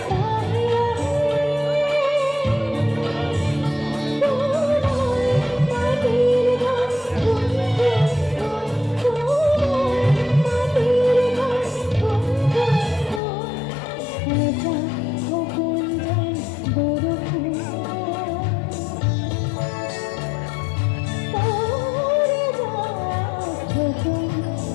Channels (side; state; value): right; drops out; at 13.2 s